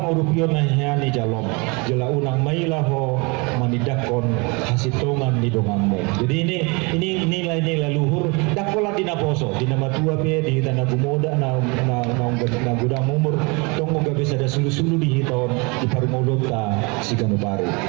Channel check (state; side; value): quieter; left; 29.1 dB